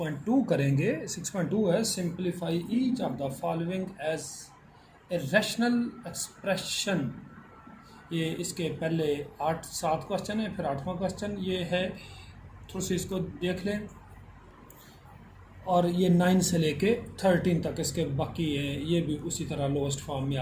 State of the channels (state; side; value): identical; both; correlation 1.00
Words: करेंगे। 6.2 है simplify each of the following as a rational expression. ये इसके पहले 7 क्वेश्चन है, फिर 8वां क्वेश्चन ये है। थोड़ी सी इसको देख लें। और ये 9 से लेके 13 तक इसके बाकी हैं, ये भी उसी तरह लोएस्ट फॉर्म में